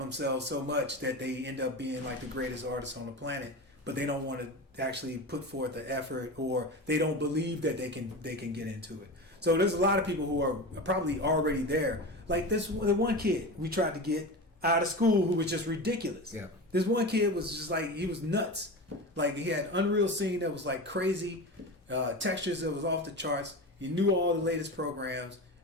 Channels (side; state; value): both; normal; correlation 0.26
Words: so much that they end up being like the greatest artists on the planet, but they don't want to actually put forth the effort, or they don't believe that they can get into it. So there's a lot of people who are probably already there. Like the one kid we tried to get out of school who was just ridiculous. Yeah. This one kid was just like, he was nuts. Like he had Unreal Scene that was like crazy, textures that was off the charts. He knew all the latest programs,